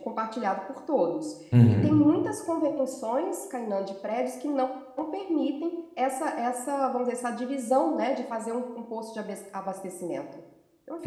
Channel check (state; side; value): identical; both; correlation 1.00